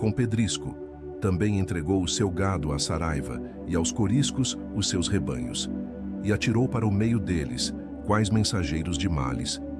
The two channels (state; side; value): identical; both; correlation 1.00